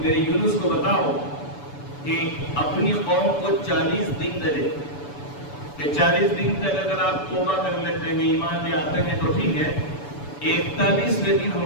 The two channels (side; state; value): right; late; 7.0 ms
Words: یونس کو بتاؤ کہ اپنی قوم کو 40 دن دے، کہ 40 دن تک اگر آپ توبہ کر لیتے ہیں، ایمان لے آتے ہیں تو ٹھیک ہے، 41ویں دن